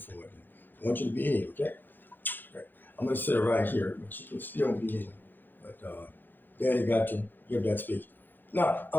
I want you to be here, okay? Okay. I'm gonna sit right here, but you can still be in. But Daddy got to give that speech. Now,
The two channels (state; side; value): late; right; 0.091 ms